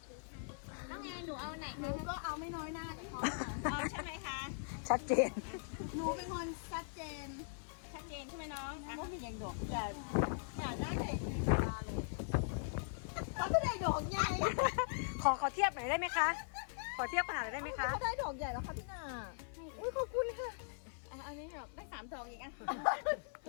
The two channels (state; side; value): silent; right; 51 dB below the other